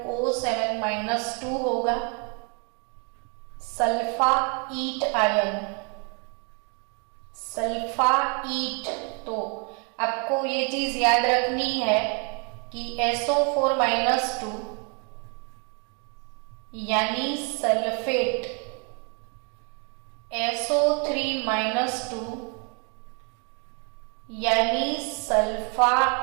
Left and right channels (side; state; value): left; quieter; 36.3 dB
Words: होगा। सल्फाईट आयन, सल्फाईट, तो आपको ये चीज याद रखनी है कि SO4-2 यानी सल्फेट, SO3-2 यानी